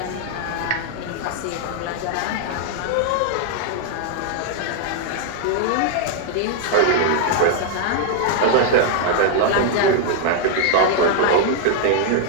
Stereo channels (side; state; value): both; different; correlation 0.00